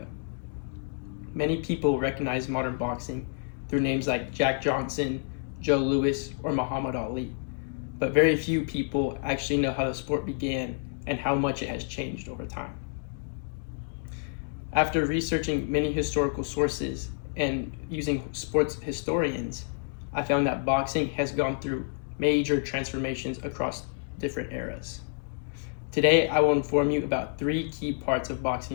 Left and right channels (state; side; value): silent; right; 59 dB below the other